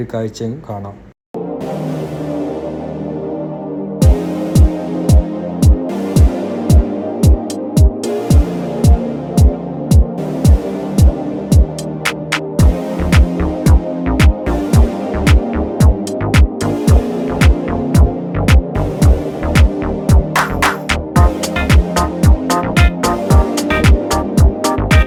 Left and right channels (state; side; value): identical; both; correlation 1.00